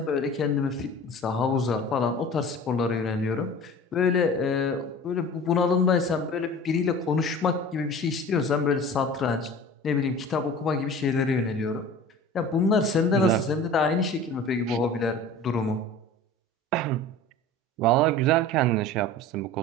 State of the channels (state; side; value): normal; both; correlation 0.39